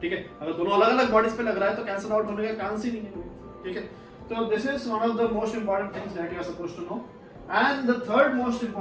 ठीक है। अगर दोनों अलग अलग बॉडीज पे लग रहा है तो कैंसिल आउट होने का चांस ही नहीं है, ठीक है। तो this is one of the most important things that you are supposed to know. And the third most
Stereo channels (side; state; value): both; identical; correlation 1.00